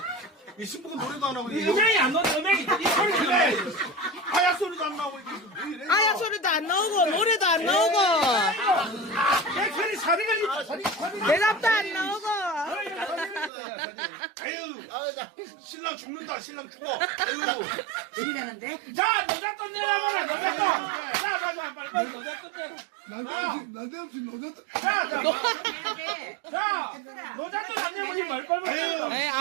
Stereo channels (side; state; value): left; drops out; at 13.5 s